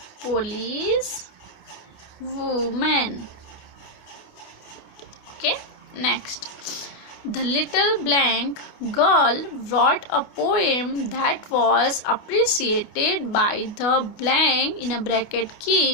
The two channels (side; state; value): right; late; 28 ms